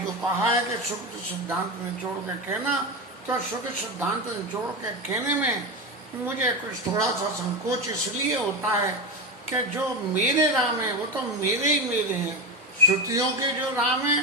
कहा है कि शुद्ध सिद्धांत निचोड़ के कहना, तो शुद्ध सिद्धांत निचोड़ के कहने में मुझे कुछ थोड़ा सा संकोच इसलिए होता है कि जो मेरे राम है वो तो मेरे ही मेरे हैं, श्रुतियों के जो राम है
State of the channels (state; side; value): normal; both; correlation 0.17